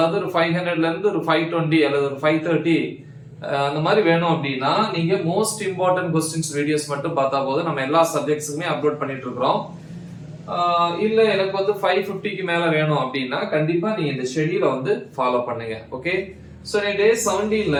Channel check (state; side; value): identical; both; correlation 1.00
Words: ஒரு 500ல இருந்து ஒரு 520 அல்லது ஒரு 530 அந்த மாதிரி வேணும் அப்படின்னா நீங்க மோஸ்ட் இம்பார்ட்டன்ட் கொஸ்டின்ஸ் வீடியோஸ் மட்டும் பார்த்தா போதும். நம்ம எல்லா சப்ஜெக்ட்ஸுக்குமே அப்லோட் பண்ணிட்டு இருக்கிறோம். இல்ல எனக்கு வந்து 550க்கு மேல வேணும் அப்படின்னா கண்டிப்பா நீங்க இந்த ஷெட்யூலை வந்து ஃபாலோ பண்ணுங்க. ஓகே, சோ நீ டே 17ல